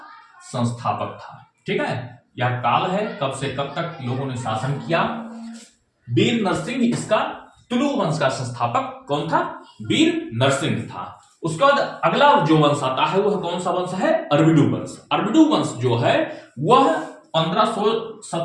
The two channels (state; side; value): identical; both; correlation 1.00